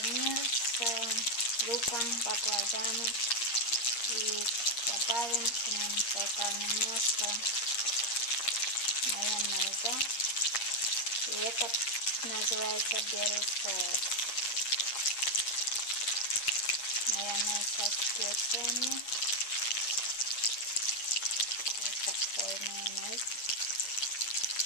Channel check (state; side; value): late; right; 8.6 ms